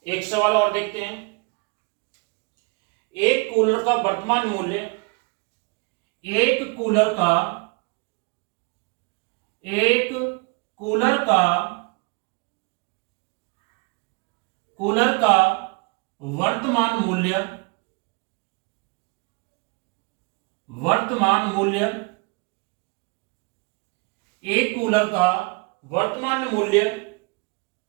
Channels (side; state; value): left; quieter; 29.8 dB